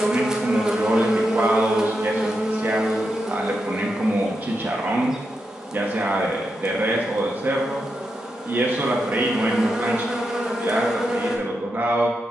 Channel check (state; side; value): normal; both; correlation 0.86